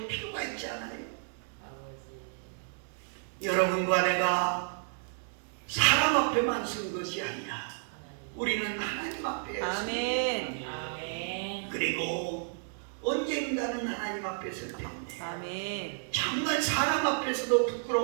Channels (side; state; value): left; silent; digital silence